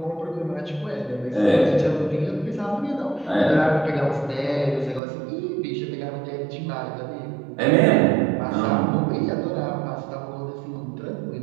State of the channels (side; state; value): left; drops out; at 5.0 s